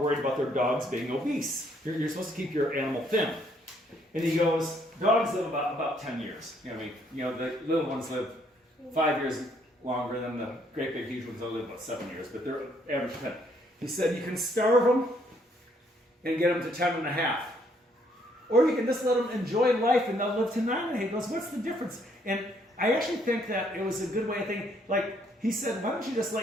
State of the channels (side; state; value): both; normal; correlation 0.68